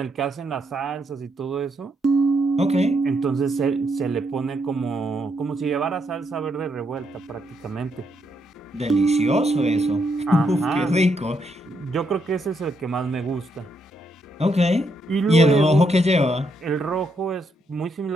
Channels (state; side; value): normal; both; correlation 0.77